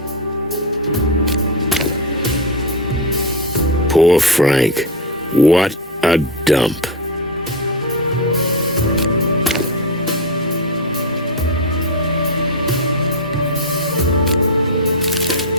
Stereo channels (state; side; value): normal; both; correlation 0.10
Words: Poor Frank. What a dump.